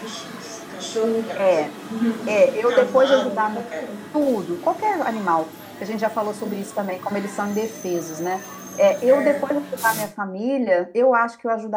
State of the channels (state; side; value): identical; both; correlation 1.00